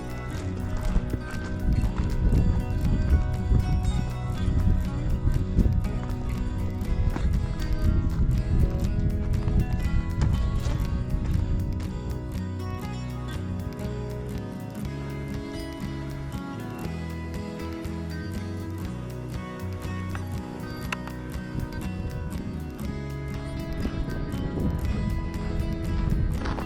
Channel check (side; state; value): both; identical; correlation 1.00